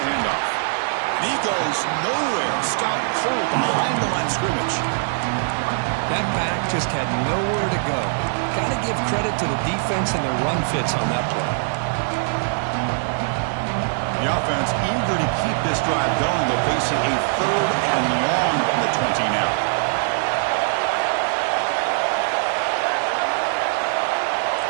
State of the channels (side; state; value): left; silent; 59 dB below the other